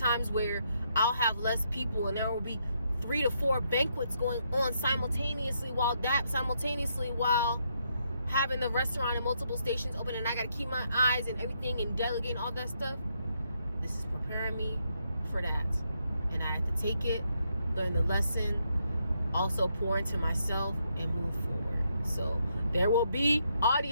where I'll have less people and there will be 3 to 4 banquets going on simultaneously while having the restaurant and multiple stations open, and I got to keep my eyes and everything and delegating all that stuff. This is preparing me for that. And I have to take it, learn the lesson, also pour into myself and move forward. So there will be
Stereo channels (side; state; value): both; inverted; correlation -0.77